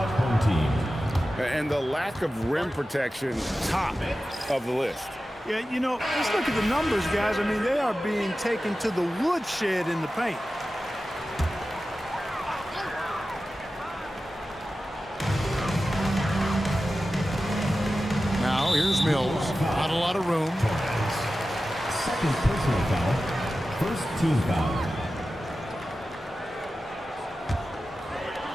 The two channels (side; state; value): both; normal; correlation 0.94